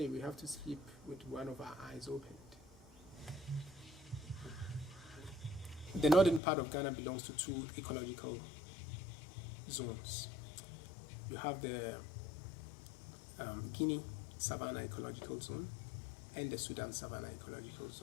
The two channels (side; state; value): right; drops out; at 6.4 s